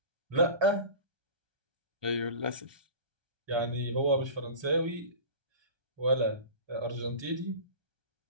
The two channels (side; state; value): left; late; 1.2 ms